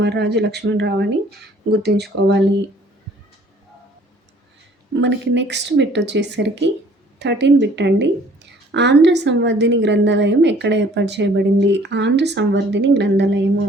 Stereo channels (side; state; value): both; normal; correlation 0.56